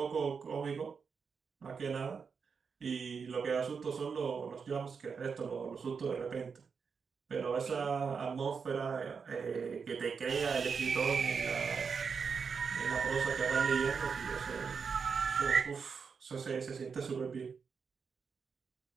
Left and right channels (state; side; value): quieter; left; 5.8 dB